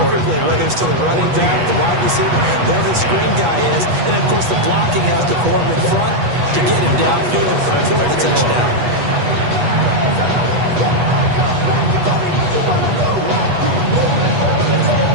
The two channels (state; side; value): late; left; 8.3 ms